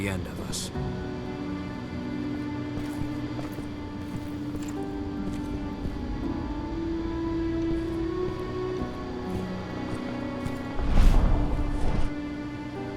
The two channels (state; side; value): identical; both; correlation 1.00